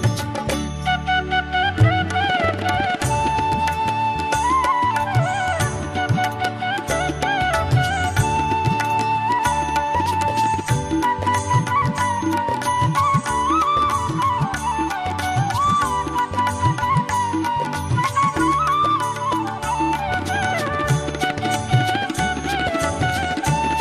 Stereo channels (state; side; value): identical; both; correlation 1.00